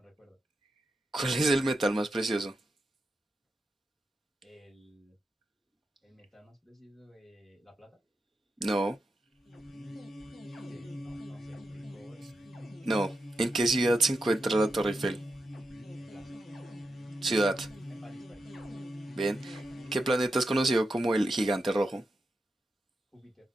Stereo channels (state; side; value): normal; both; correlation 0.88